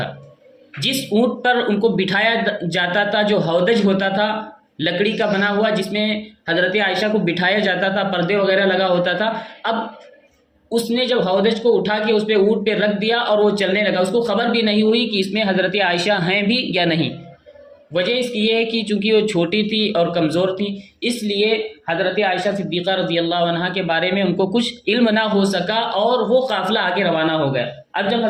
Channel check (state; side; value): identical; both; correlation 1.00